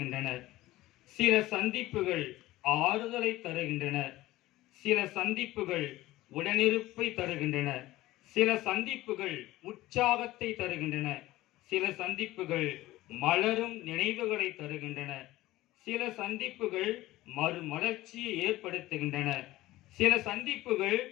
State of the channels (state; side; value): quieter; right; 17.1 dB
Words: சில சந்திப்புகள் ஆறுதலை தருகின்றன, சில சந்திப்புகள் உடனிருப்பை தருகின்றன, சில சந்திப்புகள் உற்சாகத்தை தருகின்றன, சில சந்திப்புகள் மலரும் நினைவுகளை தருகின்றன, சில சந்திப்புகள் மறுமலர்ச்சியை ஏற்படுத்துகின்றன, சில சந்திப்புகள்